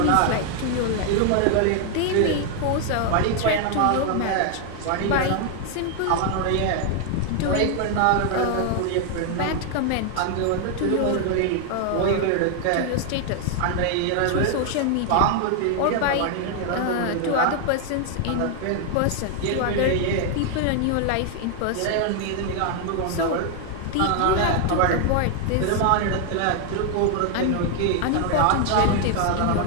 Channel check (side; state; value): both; different; correlation 0.00